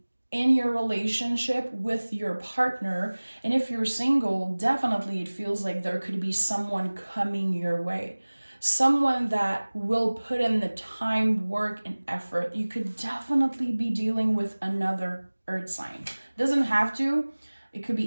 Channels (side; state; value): both; inverted; correlation -1.00